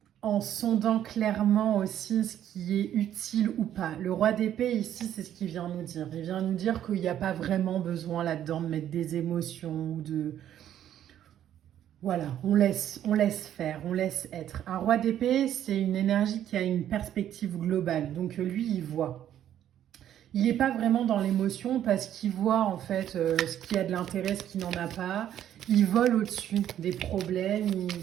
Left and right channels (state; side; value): quieter; left; 10.9 dB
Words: en sondant clairement aussi ce qui est utile ou pas. Le roi d'épée ici, c'est ce qu'il vient nous dire. Il vient nous dire qu'il n'y a pas vraiment besoin là-dedans de mettre des émotions ou de... Voilà, on laisse faire, on laisse être. Un roi d'épée, c'est une énergie qui a une perspective globale. Donc lui, il voit. Il n'est pas vraiment dans l'émotion parce qu'il voit en fait ce qui a de l'intérêt, ce qui n'en a pas. Il vole au-dessus des problèmes.